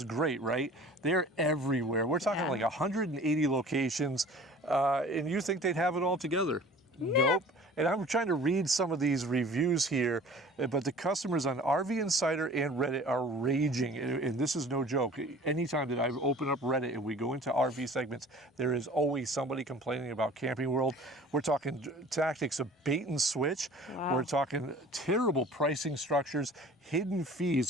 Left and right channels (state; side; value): normal; both; correlation 0.46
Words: great, right? They're everywhere. We're talking like 180 locations, and you think they'd have it all together. Nope. And I'm trying to read some of these reviews here, but the customers on RV Insider and Reddit are raging, and this is no joke. Anytime that I open up Reddit and we go into RV segments, there is always somebody complaining about Camping World. We're talking tactics of bait and switch. Wow. We're talking terrible pricing structures, hidden fees,